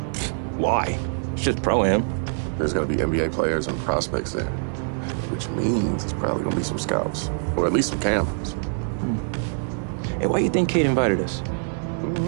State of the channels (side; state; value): left; silent; digital silence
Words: Why? It's just pro-am. There's gonna be NBA players and prospects there, which means it's probably gonna be some scouts, or at least some cameras. Hey, why do you think Kate invited us?